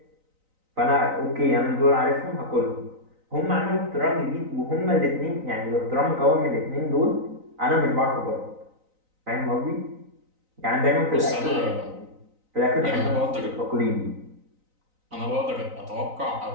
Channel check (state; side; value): late; left; 3.9 ms